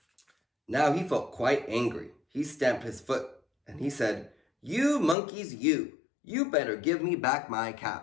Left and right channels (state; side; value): drops out; right; at 5.2 s